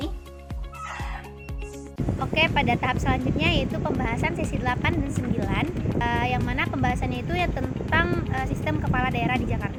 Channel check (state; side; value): identical; both; correlation 1.00